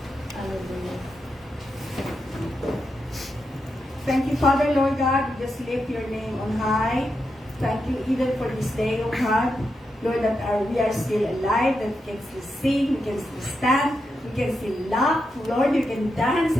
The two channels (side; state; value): both; normal; correlation 0.85